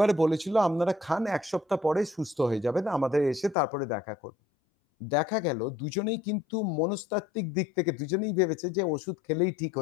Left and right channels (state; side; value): drops out; right; at 3.6 s